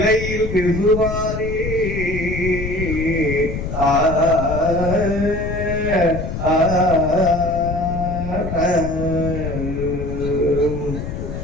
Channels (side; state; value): left; noise; rumble, 5 dB below the sound